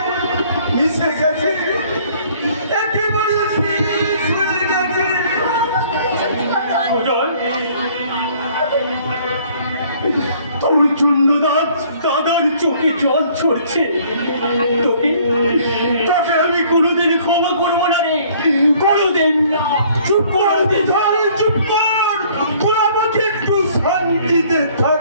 মিশে গেছে, একেবারে শেষ হয়ে গেছে। সুজয়, তোর জন্য দাদার চোখে জল ছড়ছে। তোকে আমি কোনোদিন ক্ষমা করবো না রে, কোনোদিন না। চুপ কর, চুপ কর, তোরা আমাকে একটু শান্তিতে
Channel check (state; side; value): inverted; both; correlation -0.58